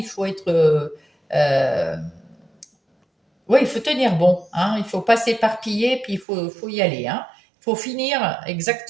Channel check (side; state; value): left; drops out; at 6.2 s